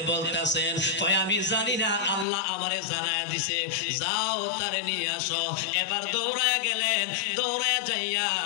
বলতাছেন? কয় আমি জানি না, আল্লাহ আমারে জানায় দিছে, যাও তারে নিয়ে আসো। এবার দৌড়ায়া গেলেন, দৌড়ায়া যাইয়া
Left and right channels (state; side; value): drops out; right; at 2.2 s